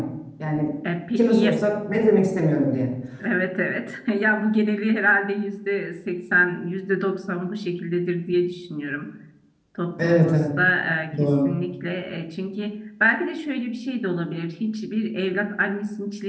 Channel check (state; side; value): identical; both; correlation 1.00